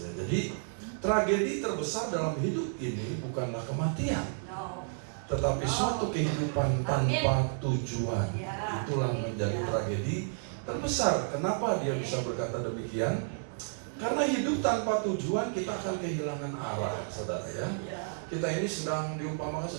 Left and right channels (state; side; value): silent; left; digital silence